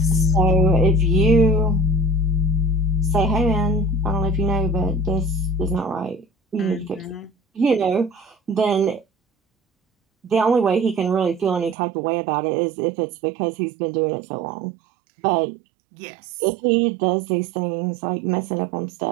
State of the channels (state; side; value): drops out; left; at 11.8 s